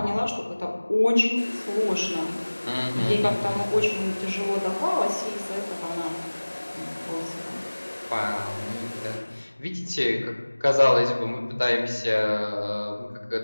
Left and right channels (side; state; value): both; inverted; correlation -1.00